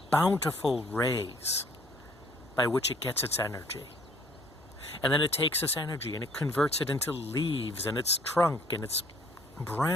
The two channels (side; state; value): both; normal; correlation 0.58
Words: bountiful rays by which it gets its energy. And then it takes this energy and it converts it into leaves and its trunk and its